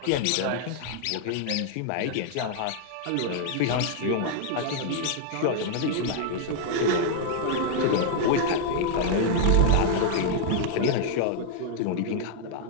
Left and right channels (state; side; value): different; both; correlation -0.01